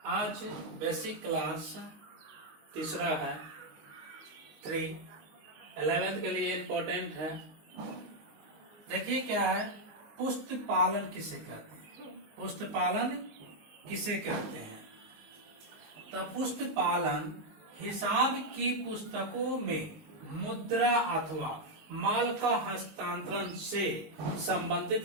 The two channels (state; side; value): late; left; 19 ms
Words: आज बेसिक क्लास तीसरा है 11th के लिए इम्पोर्टेंट है। देखिए क्या है, पुष्ट पालन किसे कहते हैं। पुष्ट पालन किसे कहते हैं? तो पुष्ट पालन हिसाब की पुस्तकों में मुद्रा अथवा माल का हस्तांतरण से संबंधित